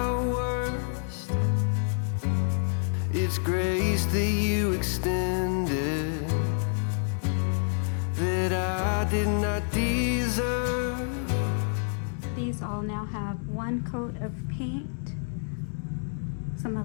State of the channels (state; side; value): silent; right; 59 dB below the other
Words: worst, it's grace that you extended that I did not deserve. These all now have one coat of paint. So I'm